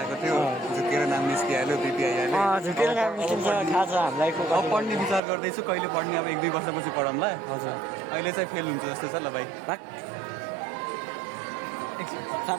थियो झुकेर नाम निस्किहाल्यो बिपी आइहाल्यो झुकेर नाम निस्किन्छ थाहा छ हामीलाई अब पढ्ने विचार गर्दैछु कहिले पढ्ने अब 1-2 वर्षपछि पढाउँला हजुर अहिले चाहिँ फेल हुन्छ जस्तो छ ल भाइ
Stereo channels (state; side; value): drops out; left; at 5.2 s